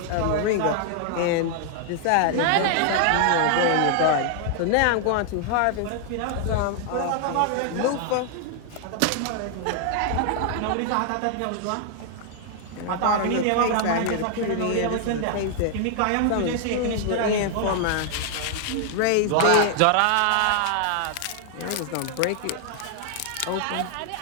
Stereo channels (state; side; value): different; both; correlation 0.00